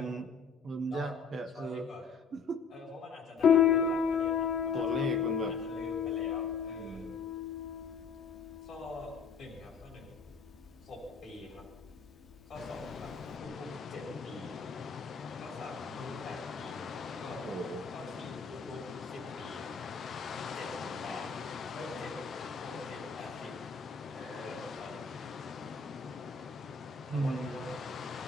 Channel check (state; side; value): quieter; right; 5.3 dB